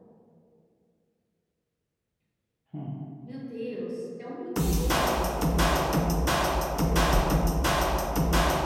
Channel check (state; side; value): identical; both; correlation 1.00